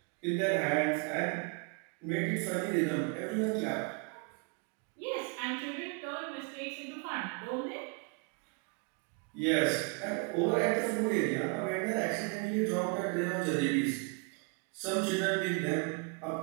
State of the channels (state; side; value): quieter; left; 34.1 dB